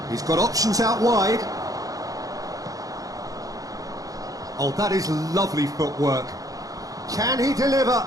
He's got options out wide. Oh, that is lovely footwork. Can he deliver?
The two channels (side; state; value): left; late; 0.17 ms